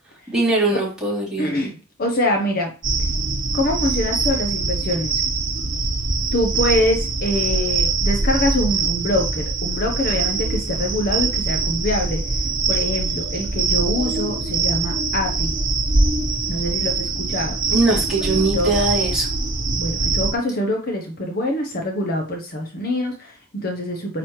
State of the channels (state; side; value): normal; both; correlation 0.45